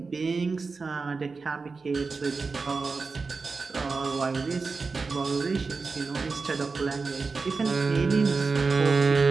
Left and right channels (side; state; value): left; quieter; 4.4 dB